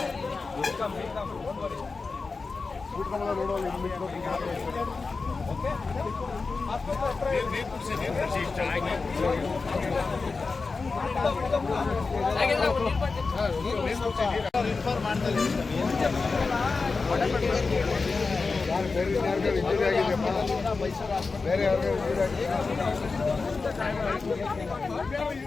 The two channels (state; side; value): quieter; right; 4.2 dB